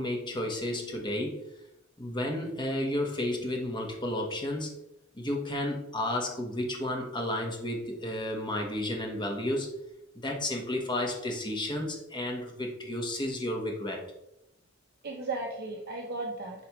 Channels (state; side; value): normal; both; correlation 0.48